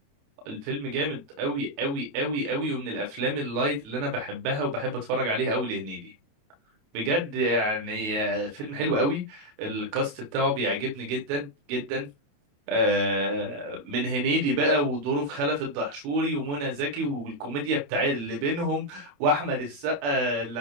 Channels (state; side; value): late; left; 28 ms